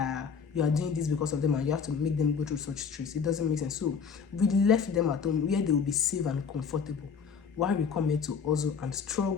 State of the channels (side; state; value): right; quieter; 6.3 dB